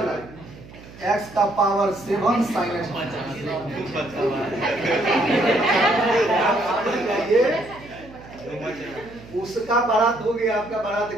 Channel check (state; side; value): noise; right; hum, 19 dB below the sound